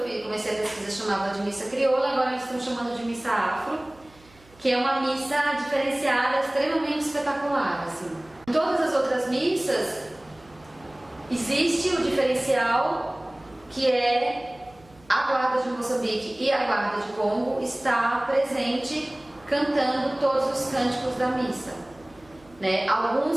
comecei a pesquisa chamava de missa crioula, agora eles estão chamando de missa afro, que é uma missa diferenciada, extremamente espetacular, assim. Em todas as outras missas existe o diferencial que é a Guarda de Moçambique e a Guarda de Congo está presente cantando todos os cânticos da missa, né? Alguns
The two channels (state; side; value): noise; right; hum, 27 dB below the sound